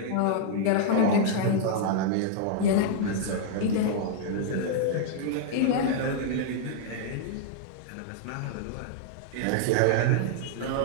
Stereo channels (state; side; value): different; both; correlation -0.01